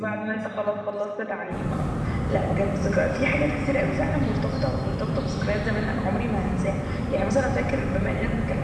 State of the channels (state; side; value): identical; both; correlation 1.00